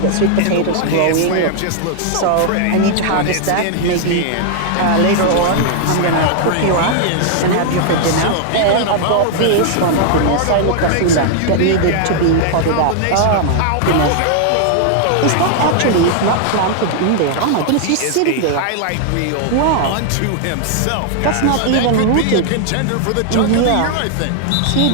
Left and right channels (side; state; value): both; different; correlation 0.00